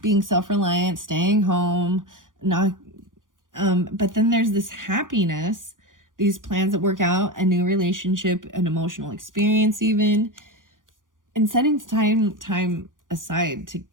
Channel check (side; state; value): left; late; 0.89 ms